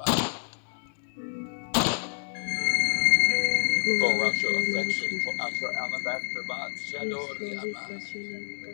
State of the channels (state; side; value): silent; right; 59 dB below the other